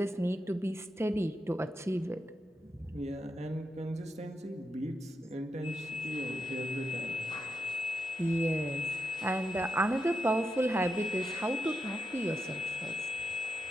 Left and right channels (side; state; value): both; normal; correlation 0.84